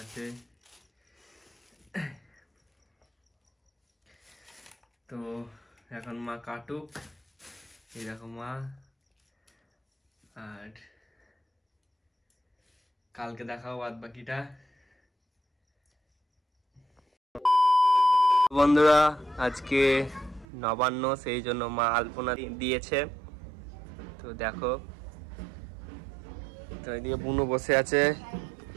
আছে। তো এখন মা কাটুক, এই দেখো মা। আর কালকে দেখাও বাদ বাকিটা। বন্ধুরা আজকে নবান্ন, সেই জন্য মা আলপনা দিয়েছে। তো দেখো, তো এদিকে বুনু বসে আছে।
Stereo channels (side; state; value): left; drops out; at 20.5 s